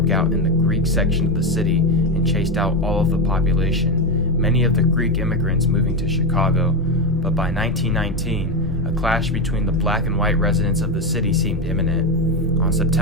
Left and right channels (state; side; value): normal; both; correlation 0.12